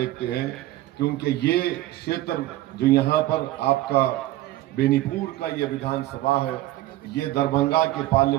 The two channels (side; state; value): left; quieter; 16.0 dB